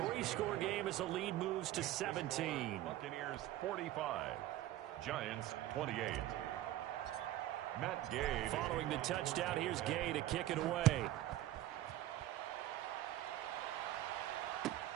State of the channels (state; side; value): quieter; left; 14.1 dB